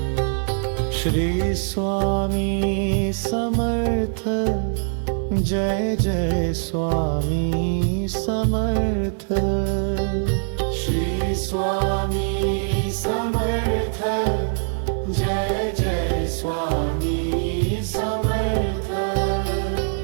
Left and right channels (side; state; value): left; silent; digital silence